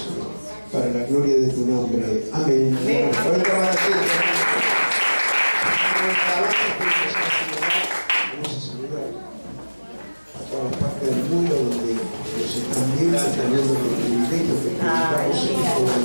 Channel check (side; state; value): both; inverted; correlation -1.00